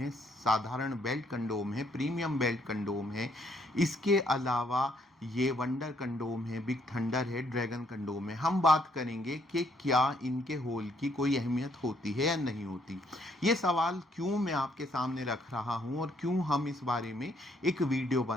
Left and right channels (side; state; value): both; normal; correlation 0.69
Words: साधारण बेल्ट कंडोम है, प्रीमियम बेल्ट कंडोम है, इसके अलावा ये वंडर कंडोम है, बिग थंडर है, ड्रैगन कंडोम है। हम बात करेंगे कि क्या इनके होल की कोई अहमियत होती है या नहीं होती। ये सवाल क्यों मैं आपके सामने रख रहा हूं और क्यों हम इस बारे में एक वीडियो